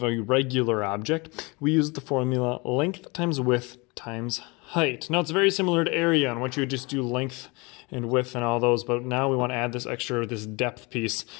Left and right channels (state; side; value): quieter; right; 27.2 dB